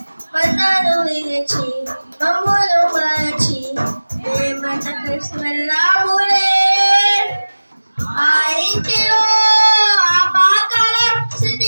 బంధాలు విరచి మమ్ములు మరచి మేమంతకు వెళ్ళాములే ఆ ఇంటిలో ఆపాకల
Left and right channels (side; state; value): both; inverted; correlation -1.00